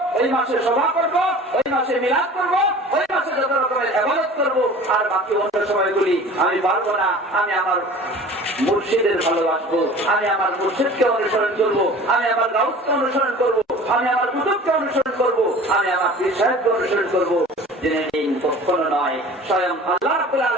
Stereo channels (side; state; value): both; normal; correlation 0.42